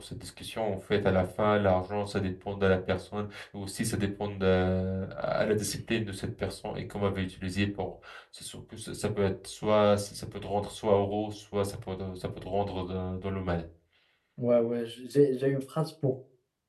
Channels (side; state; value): both; identical; correlation 1.00